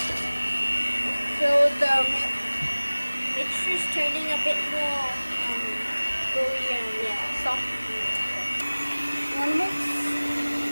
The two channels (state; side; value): inverted; both; correlation -1.00